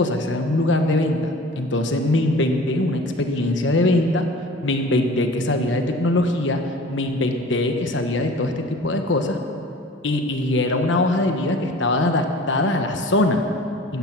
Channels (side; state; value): both; normal; correlation 0.43